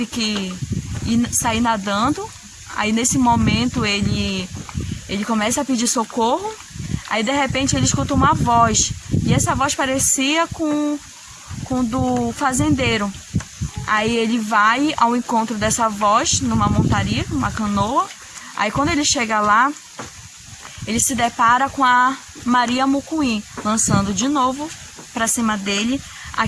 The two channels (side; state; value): both; identical; correlation 1.00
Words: que sair nadando. Aí nesse momento ele começa a pedir socorro, aí de repente ele escuta uma voz, e essa voz parecia com do fazendeiro. Aí ele vai ao encontro dessa voz numa montaria, numa canoa. Aí quando ele chega lá, ele se depara com a Maria Mucuim, lançando de novo para cima dele